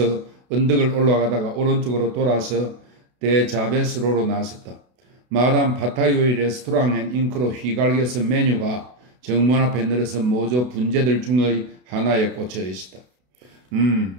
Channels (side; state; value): left; late; 32 ms